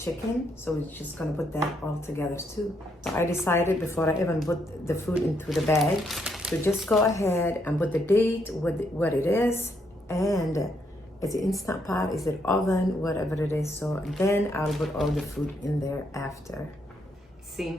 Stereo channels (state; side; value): normal; both; correlation 0.75